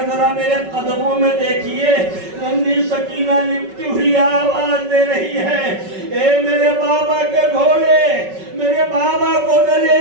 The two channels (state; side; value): late; left; 5.3 ms